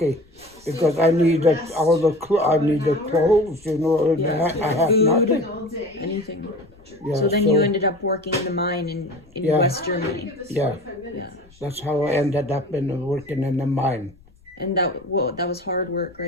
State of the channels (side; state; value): left; noise; rumble, 28 dB below the sound